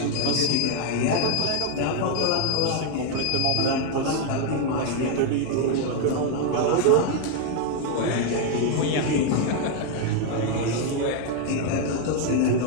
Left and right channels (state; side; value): different; both; correlation 0.00